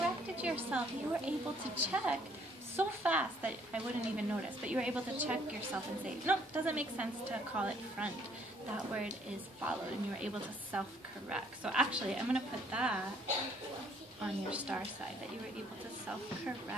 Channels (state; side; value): normal; both; correlation 0.63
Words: yourself. You were able to check so fast that I wouldn't even notice, but you were able to check yourself and say, no, it doesn't make sense to call it front. That word is followed, and you were able to self-correct. So actually, I'm going to put that on your star side, that you were able to